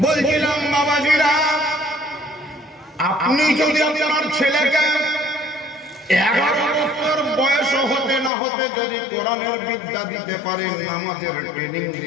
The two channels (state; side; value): drops out; right; at 8.3 s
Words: বলছিলাম বাবাজিরা, আপনি যদি আপনার ছেলেকে 11 বছর বয়স হতে না হতে যদি কোরআনের বিদ্যা দিতে পারেন, নামাজের ট্রেনিং